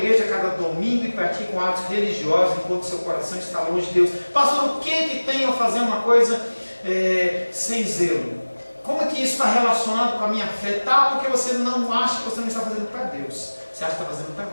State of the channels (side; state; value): both; inverted; correlation -1.00